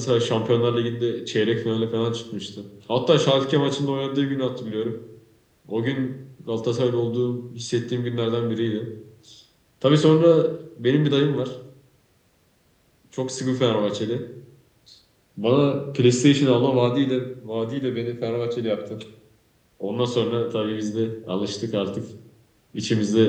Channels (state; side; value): identical; both; correlation 1.00